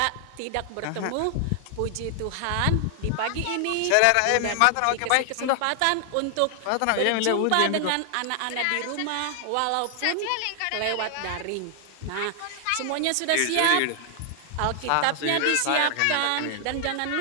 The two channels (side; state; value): both; different; correlation 0.00